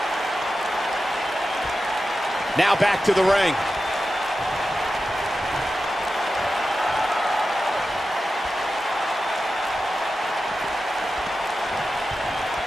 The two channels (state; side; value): normal; both; correlation 0.92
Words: Now back to the ring.